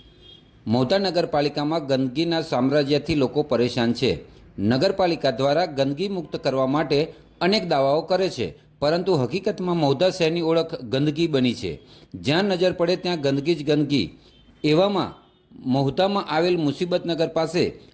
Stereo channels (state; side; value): identical; both; correlation 1.00